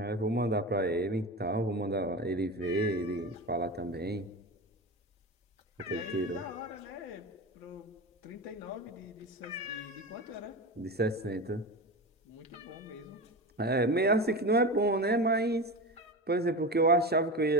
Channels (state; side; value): normal; both; correlation 0.24